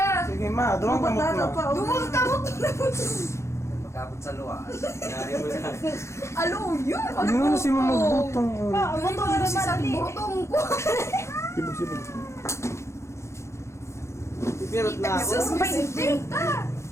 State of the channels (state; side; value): late; right; 0.13 ms